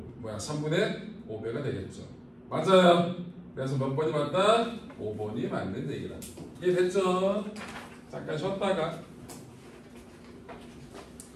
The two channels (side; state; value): both; identical; correlation 1.00